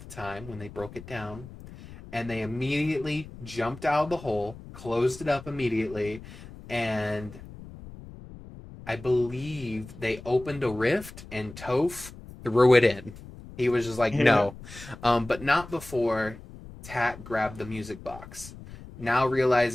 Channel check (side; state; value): left; noise; rumble, 16 dB below the sound